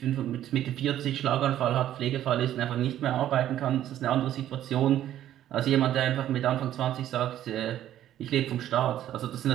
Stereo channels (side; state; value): left; quieter; 12.0 dB